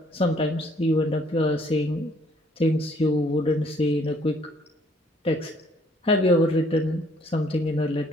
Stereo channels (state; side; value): normal; both; correlation 0.62